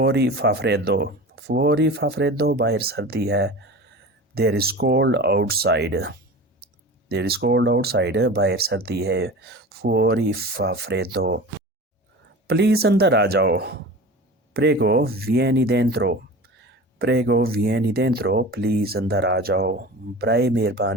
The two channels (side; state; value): both; normal; correlation 0.34